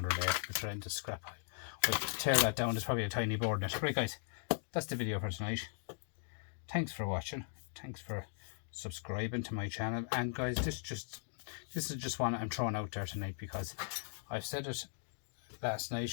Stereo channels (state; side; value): silent; right; digital silence